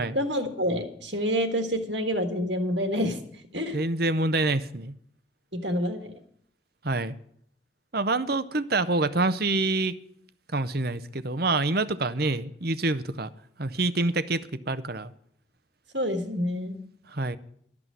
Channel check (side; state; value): both; normal; correlation 0.32